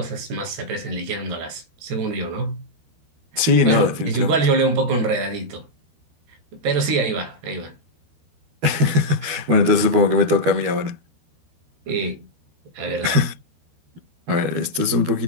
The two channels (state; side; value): late; left; 12 ms